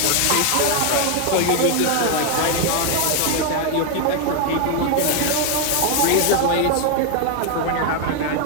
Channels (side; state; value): both; different; correlation 0.01